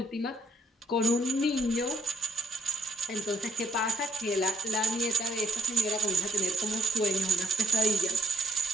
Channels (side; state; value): both; normal; correlation 0.68